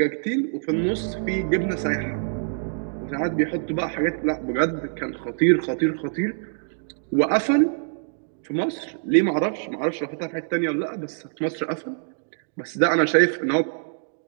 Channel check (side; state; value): left; silent; digital silence